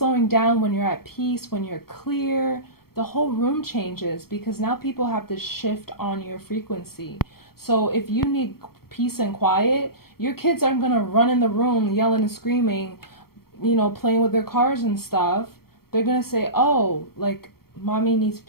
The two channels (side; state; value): right; late; 0.94 ms